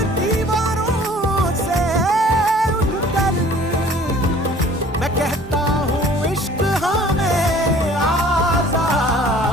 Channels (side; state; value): both; normal; correlation 0.51